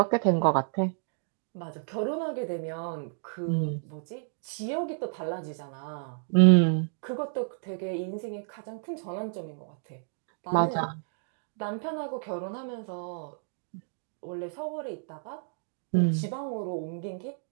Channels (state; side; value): silent; left; digital silence